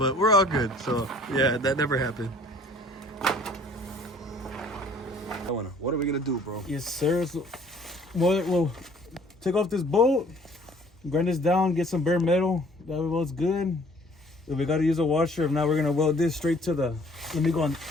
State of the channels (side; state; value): both; normal; correlation 0.55